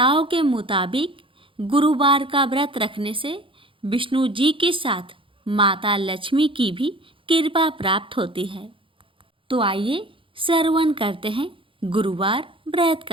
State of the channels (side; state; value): left; late; 0.25 ms